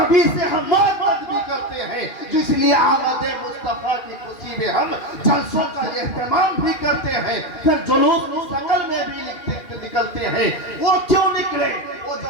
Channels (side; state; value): right; late; 2.4 ms